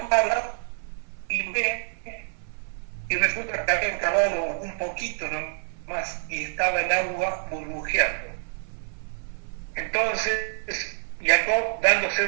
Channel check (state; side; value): silent; left; 55 dB below the other